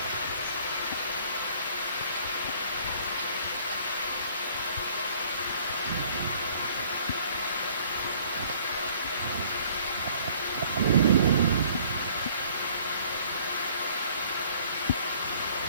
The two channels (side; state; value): both; inverted; correlation -0.57